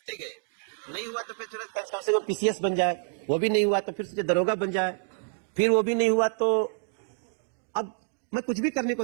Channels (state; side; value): silent; left; digital silence